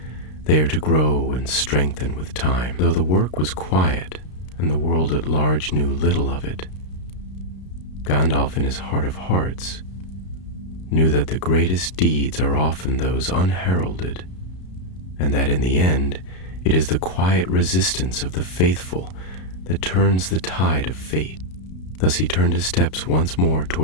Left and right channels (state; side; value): late; right; 33 ms